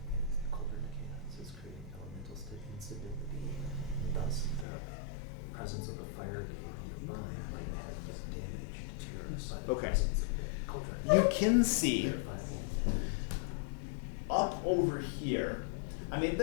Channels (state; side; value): drops out; right; at 4.7 s